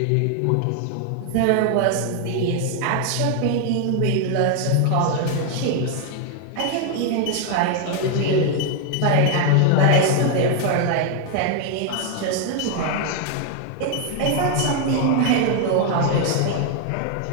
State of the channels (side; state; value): both; different; correlation 0.00